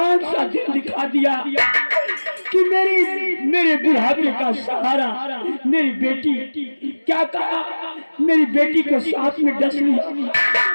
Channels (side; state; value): both; inverted; correlation -1.00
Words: सा दिन दिखा दिया कि मेरे बुढ़ापे का सहारा मेरी बेटी। क्या कहा? मेरी बेटी को सांप में डस लिया।